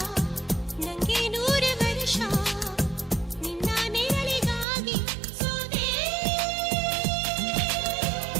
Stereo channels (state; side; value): drops out; left; at 4.7 s